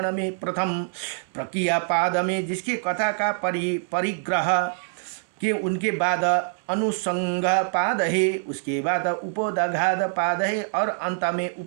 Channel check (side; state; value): left; silent; 62 dB below the other